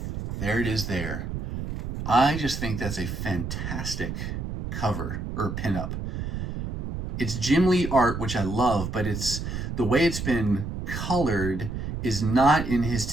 there it is there. I just think that's a fantastic cover or pinup. It's Jim Lee art, which I love, but it's the way it's been colored is not in his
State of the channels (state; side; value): noise; right; rumble, 5 dB below the sound